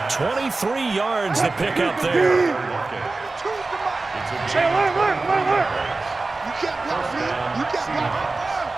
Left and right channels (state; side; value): quieter; left; 3.5 dB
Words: 23 yards to pick up there. Hey, look. You can't block me. You can't block.